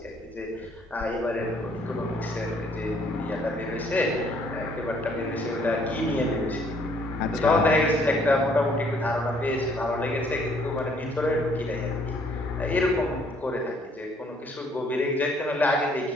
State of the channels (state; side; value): normal; both; correlation 0.64